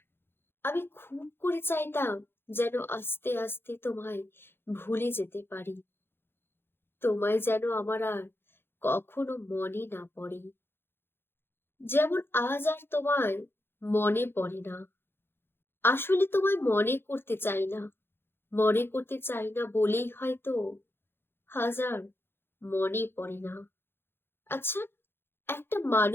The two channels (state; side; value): late; right; 0.11 ms